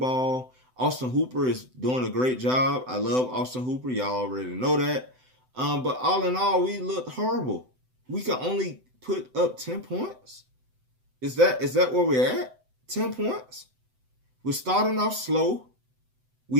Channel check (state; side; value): late; left; 7.9 ms